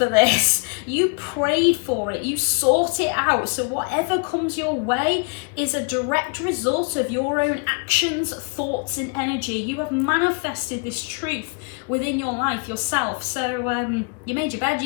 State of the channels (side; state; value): right; quieter; 36.8 dB